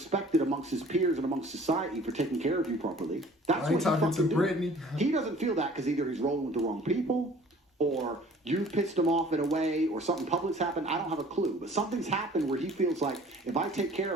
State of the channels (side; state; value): both; normal; correlation 0.51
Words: amongst his peers and amongst society for taking care of you properly, that's what he's fucking doing. He doesn't feel that because either he's rolling with the wrong people, or you pissed him off in a way, or something public's happened. I don't have a clue. But something's happened where he feels like, if I take care